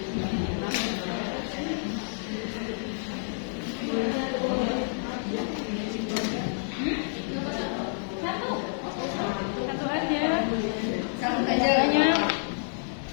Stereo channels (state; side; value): silent; right; 57 dB below the other